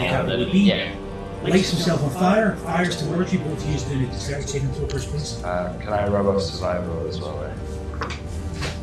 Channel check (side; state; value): both; identical; correlation 1.00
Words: would be. Yeah. Lights himself on fire, fires towards you, both used in a dexterity saving throw first place. Can I rub off survival as well? Eh?